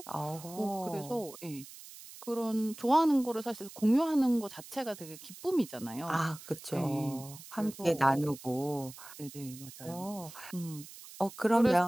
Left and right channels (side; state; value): right; noise; hiss, 16 dB below the sound